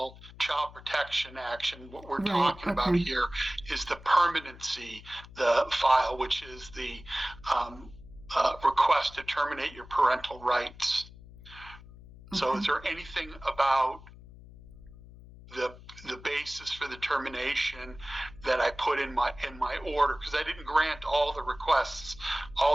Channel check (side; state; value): left; noise; hum, 19 dB below the sound